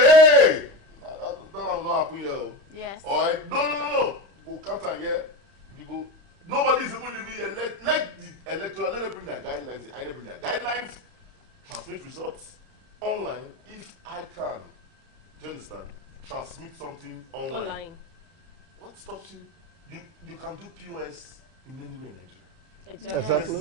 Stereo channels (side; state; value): left; late; 30 ms